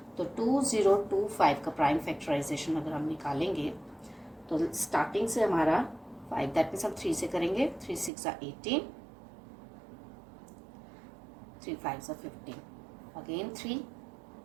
तो 2025 का प्राइम फैक्टराइजेशन अगर हम निकालेंगे तो स्टार्टिंग से हमारा 5, दैट मीन्स हम 3 से करेंगे। 3 6 18, 3 5 15, अगेन 3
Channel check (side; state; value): left; drops out; at 8.1 s